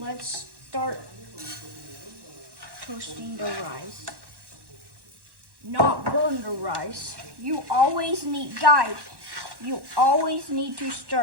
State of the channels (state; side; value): late; left; 1.1 ms